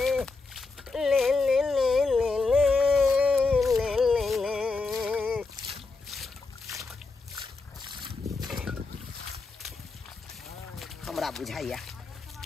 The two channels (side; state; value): right; quieter; 3.9 dB